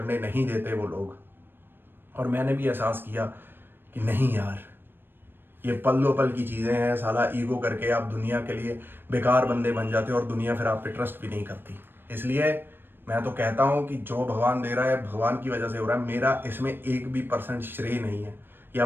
नहीं देते वो लोग। और मैंने भी एहसास किया कि नहीं यार, ये पल दो पल की चीज़ें हैं। साला ईगो करके आप दुनिया के लिए बेकार बंदे बन जाते हो और दुनिया फिर आप पे ट्रस्ट भी नहीं करती। इसलिए मैं तो कहता हूँ कि जो भगवान दे रहा है भगवान की वजह से हो रहा है। मेरा इसमें 1% श्रेय नहीं है,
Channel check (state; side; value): late; left; 0.098 ms